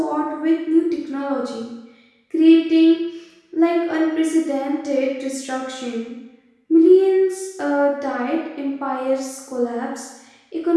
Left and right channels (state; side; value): identical; both; correlation 1.00